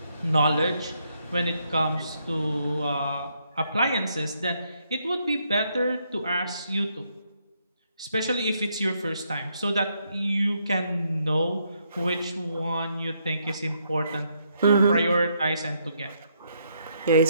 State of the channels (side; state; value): both; inverted; correlation -0.75